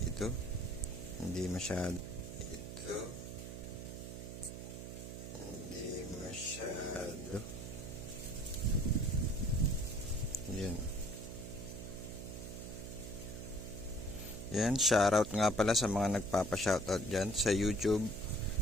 Ito. Hindi masyado. Ito. Hindi masyado. Yan. Yan, shoutout nga pala sa mga nagpapa-shoutout dyan sa YouTube,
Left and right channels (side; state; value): right; noise; hum, 9 dB below the sound